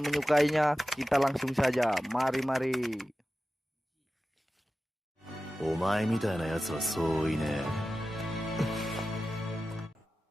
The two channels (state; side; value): normal; both; correlation 0.94